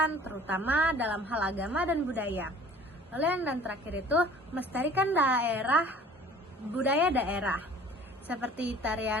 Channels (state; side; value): normal; both; correlation 0.49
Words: terutama dalam hal agama dan budaya. Lalu yang terakhir itu melestarikan budaya daerah, seperti